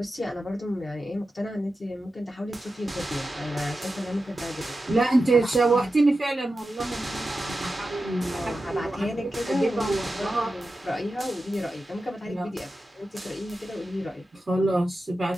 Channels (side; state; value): both; normal; correlation 0.92